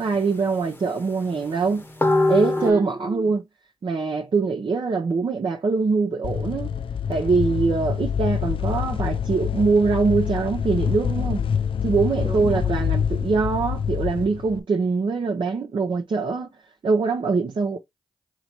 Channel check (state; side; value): normal; both; correlation 0.75